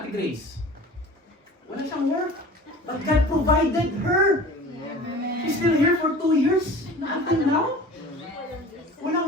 Grace. Wala siyang work. But God provided her. She's still here for 2 years. Until now.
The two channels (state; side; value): normal; both; correlation 0.41